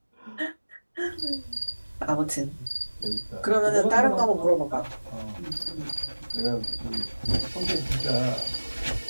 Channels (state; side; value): inverted; both; correlation -1.00